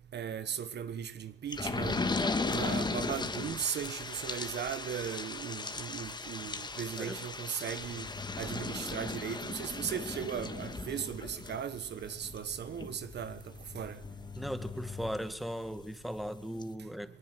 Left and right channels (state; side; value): normal; both; correlation 0.40